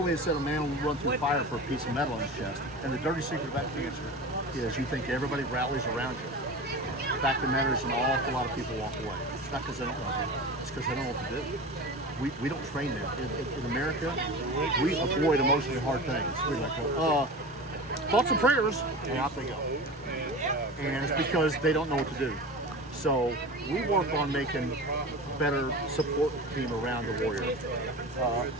said a man will run through fire for a piece of metal in his chest. And the dirty secret about cancer is you think everybody rallies around you. The fact of the matter is, an awful lot of people walk away. It's not because they don't love you. It's because they don't know what to do. We don't train them. In America, we avoid emotionally hard things. We're like, thoughts and prayers, and out they go. And it's because they don't know what to do. So we work on making better support team around the warrior.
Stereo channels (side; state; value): both; normal; correlation 0.31